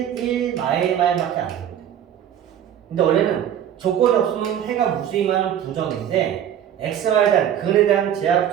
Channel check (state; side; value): quieter; left; 9.9 dB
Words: 1, 마일 밖에 안 되거든. 근데 원래는 조건이 없으면 해가 무수히 많은 부정인데 x, y에 대한 근에 대한 제약